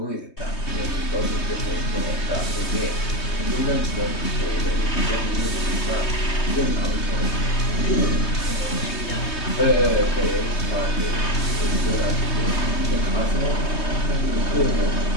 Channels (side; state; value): right; late; 3.2 ms